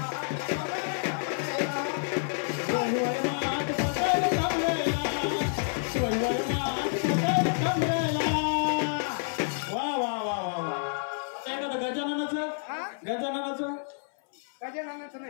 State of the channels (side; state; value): right; silent; 59 dB below the other